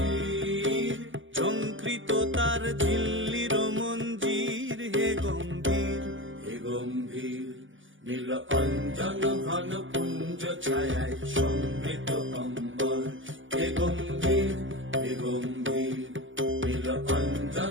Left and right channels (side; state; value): left; late; 0.57 ms